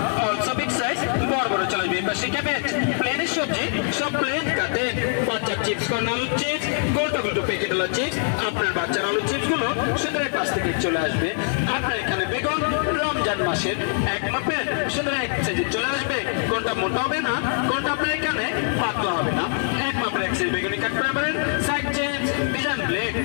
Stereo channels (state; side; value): silent; right; 63 dB below the other